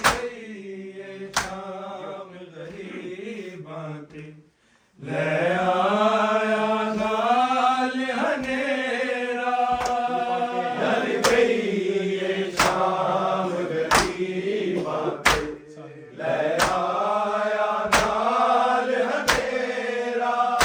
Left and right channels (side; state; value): both; identical; correlation 1.00